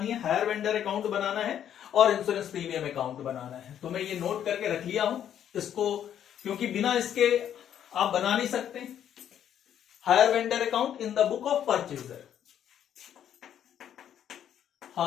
है, हायर वेंडर अकाउंट बनाना है और इंश्योरेंस प्रीमियम अकाउंट बनाना है। तो मैं ये नोट करके रख लिया हूं इसको, क्योंकि बिना इसके आप बना नहीं सकते। Hire vendor account in the book of purchaser,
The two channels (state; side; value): quieter; right; 9.9 dB